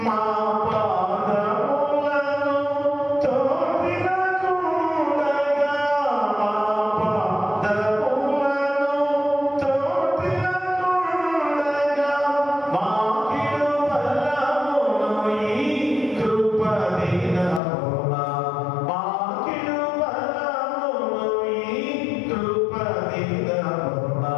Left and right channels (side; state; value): right; drops out; at 17.6 s